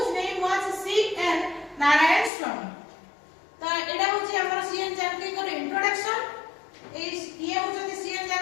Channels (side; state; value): right; drops out; at 2.3 s